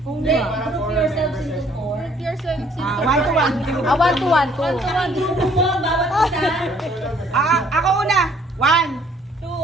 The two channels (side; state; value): both; normal; correlation 0.61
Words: Hindi. Group yourselves into 4. Group yourselves into 1 to 1. Ah, 1 to 1. 1 to 1. Group mo, bawat isa. Ako una. 1.